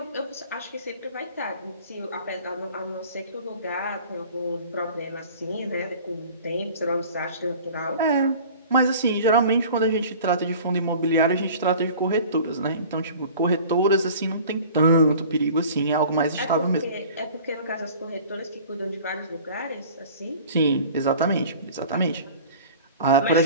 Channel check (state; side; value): inverted; both; correlation -0.44